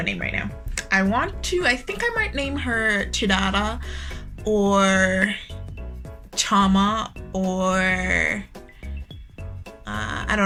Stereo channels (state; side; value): identical; both; correlation 1.00